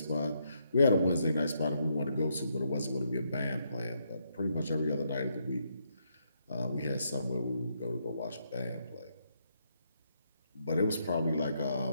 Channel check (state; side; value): inverted; both; correlation -0.77